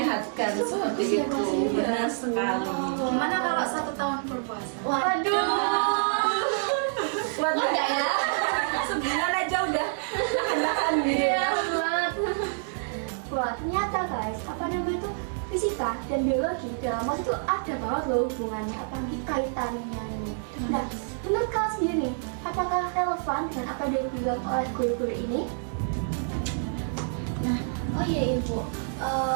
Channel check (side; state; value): left; silent; digital silence